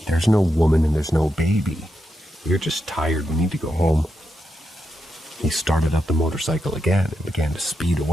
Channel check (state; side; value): normal; both; correlation 0.85